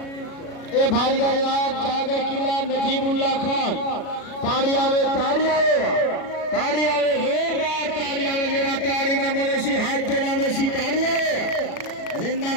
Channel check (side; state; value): right; late; 36 ms